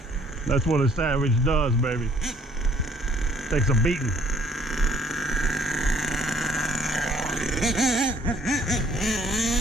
That's what a Savage does, baby. Takes a beating.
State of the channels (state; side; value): normal; both; correlation 0.61